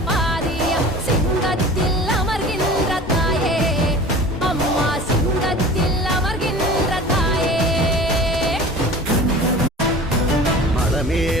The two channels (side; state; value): both; normal; correlation 0.40